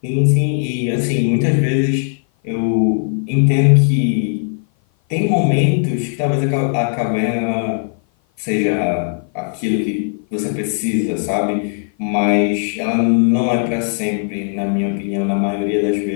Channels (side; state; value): right; silent; 55 dB below the other